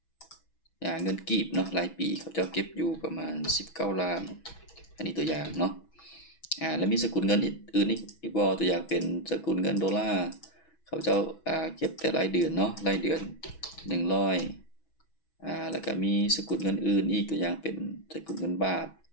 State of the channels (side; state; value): right; late; 6.1 ms